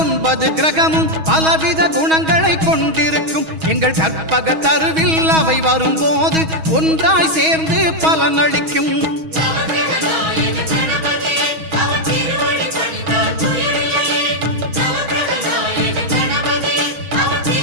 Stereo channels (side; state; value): left; late; 6.2 ms